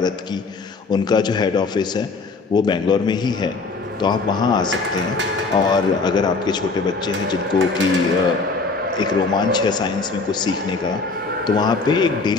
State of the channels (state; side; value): quieter; right; 4.1 dB